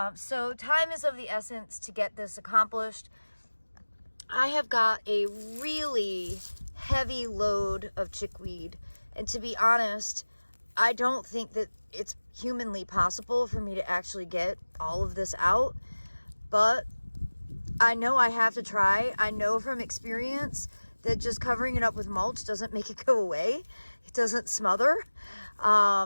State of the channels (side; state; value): both; inverted; correlation -1.00